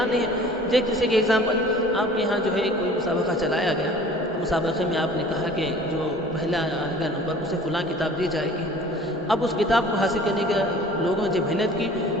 نہیں ہے۔ جیسے کہ ایگزامپل آپ کے یہاں جو ہے کوئی مسابقہ چلایا گیا، مسابقے میں آپ نے کہا کہ جو پہلا آئے گا نمبر اسے فلاں کتاب دی جائے گی۔ اب اس کتاب کو حاصل کرنے کے لوگوں نے جب محنت کی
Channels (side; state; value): both; normal; correlation 0.47